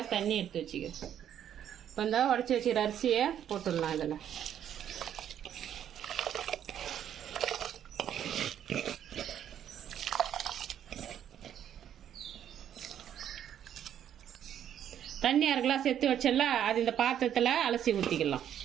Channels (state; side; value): quieter; left; 10.0 dB